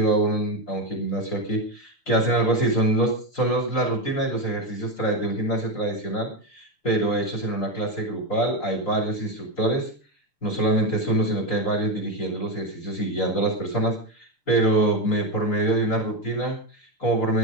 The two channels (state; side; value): late; right; 6.8 ms